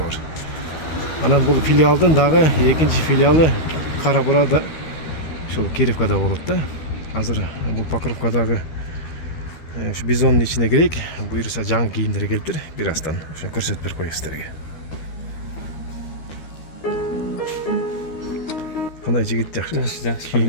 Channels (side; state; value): right; late; 13 ms